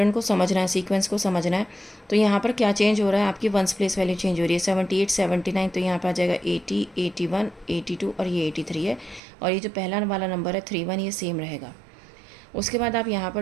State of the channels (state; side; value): drops out; left; at 9.2 s